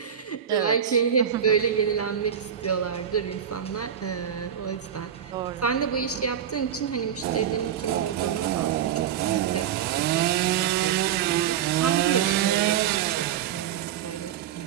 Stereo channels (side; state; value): left; quieter; 9.2 dB